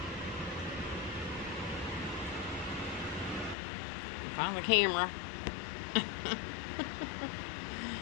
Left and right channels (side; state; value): right; drops out; at 3.6 s